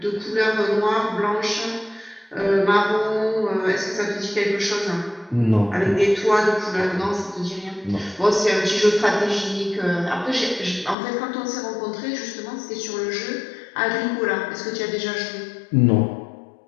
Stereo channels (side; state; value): right; drops out; at 11.0 s